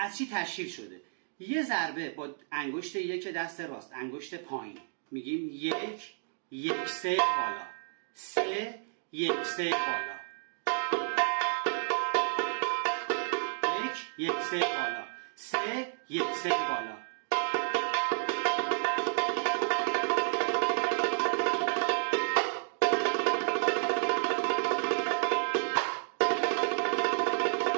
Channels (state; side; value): silent; left; digital silence